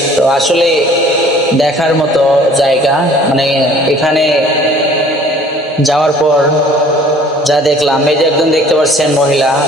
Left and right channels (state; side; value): normal; both; correlation 0.53